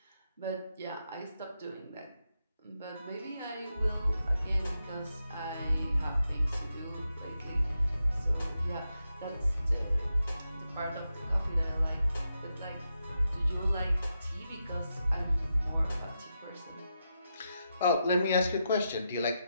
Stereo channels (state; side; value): inverted; both; correlation -0.86